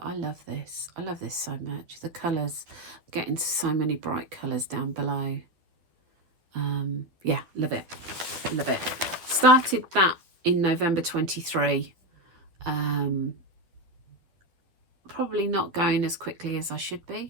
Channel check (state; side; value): late; left; 11 ms